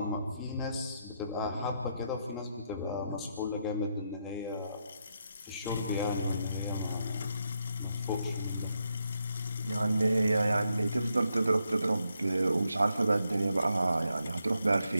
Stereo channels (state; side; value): inverted; both; correlation -0.81